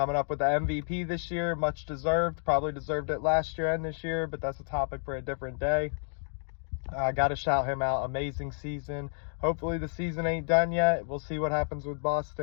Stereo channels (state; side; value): silent; right; 58 dB below the other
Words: up with the MVP this year. Much deserved. Probably deserved it last year and this year, but that's a topic for a different day. I got to shout him out. Amazing season. Hopefully the season ain't done yet. We'll see what happens with